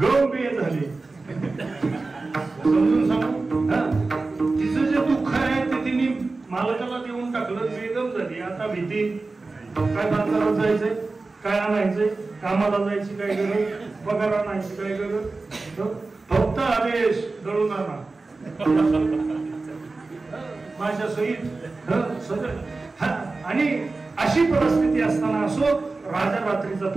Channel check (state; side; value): quieter; left; 3.6 dB